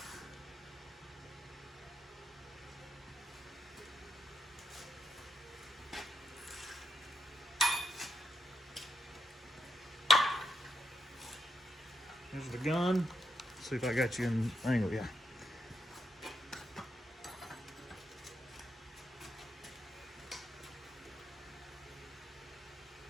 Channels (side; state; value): both; normal; correlation 0.80